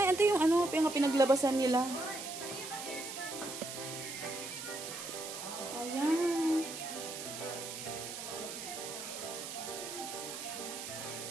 ito yung ano, yung pinaglabasan nila. Ayan.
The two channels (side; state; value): right; noise; hiss, 8 dB below the sound